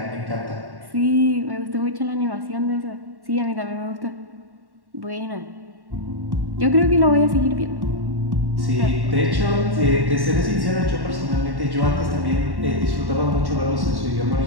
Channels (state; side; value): late; left; 1.1 ms